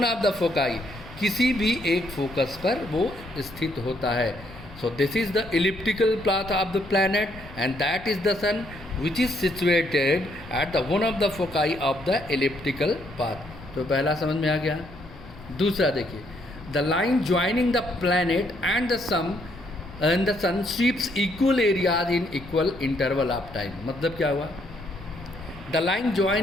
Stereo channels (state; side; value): noise; left; rumble, 18 dB below the sound